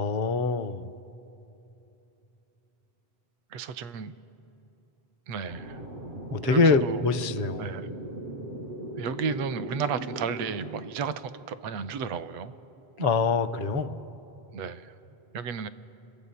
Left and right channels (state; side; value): late; left; 7.8 ms